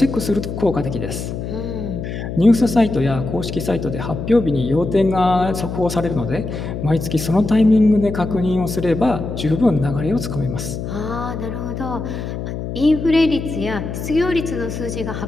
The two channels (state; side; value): noise; left; hum, 6 dB below the sound